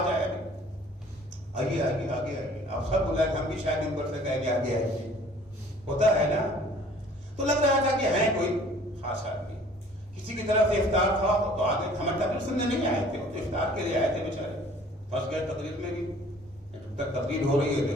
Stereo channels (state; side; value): normal; both; correlation 0.52